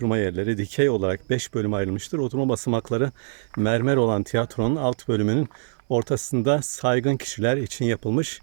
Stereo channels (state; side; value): silent; left; digital silence